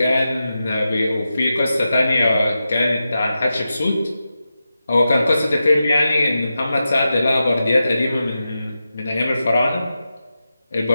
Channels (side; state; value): both; inverted; correlation -0.90